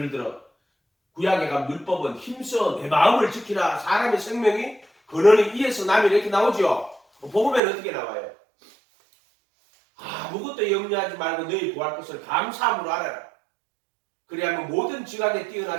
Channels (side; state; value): left; drops out; at 7.6 s